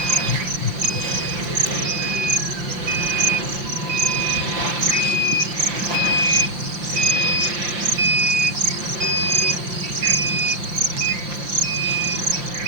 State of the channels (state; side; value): late; left; 5.7 ms